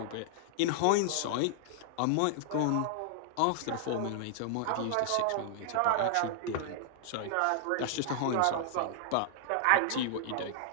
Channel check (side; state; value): both; different; correlation -0.01